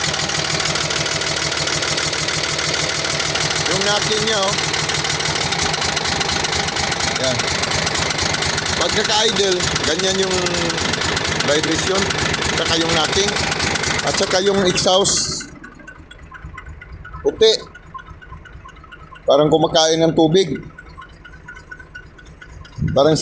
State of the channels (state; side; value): identical; both; correlation 1.00